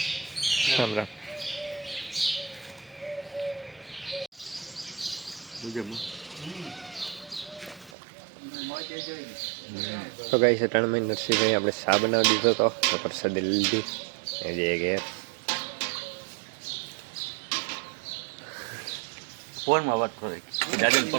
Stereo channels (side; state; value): left; drops out; at 8.0 s